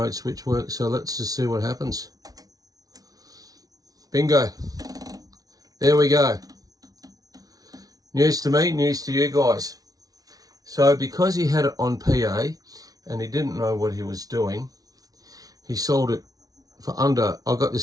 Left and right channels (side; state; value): left; late; 0.18 ms